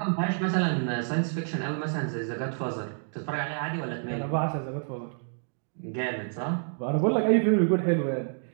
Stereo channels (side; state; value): left; silent; 59 dB below the other